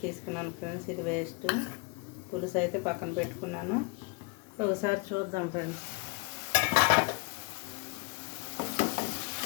తీసుకున్నాను ఫ్రెండ్స్. ఇది వేస్ట్. పులుసు అయితే పక్కన పెట్టుకున్నాను. ఒకసారి చూద్దాం ఫ్రెండ్స్.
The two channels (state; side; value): quieter; right; 29.4 dB